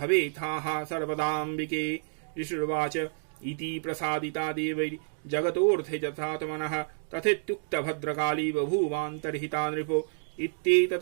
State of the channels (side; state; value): left; silent; digital silence